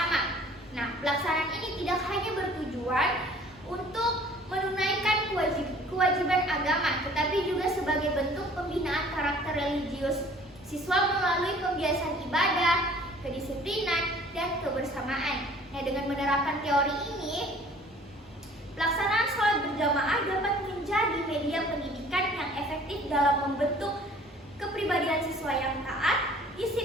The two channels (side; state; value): both; normal; correlation 0.52